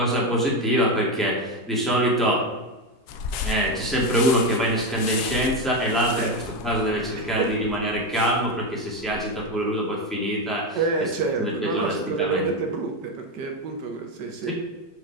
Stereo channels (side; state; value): both; normal; correlation 0.12